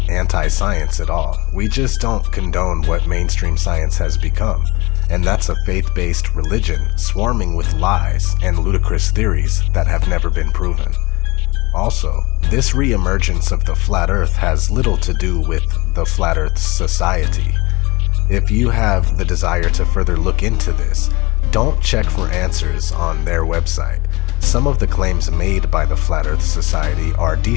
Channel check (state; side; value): quieter; right; 23.1 dB